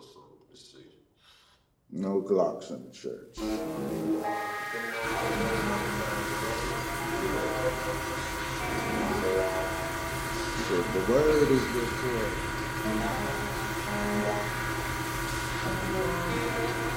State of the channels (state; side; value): identical; both; correlation 1.00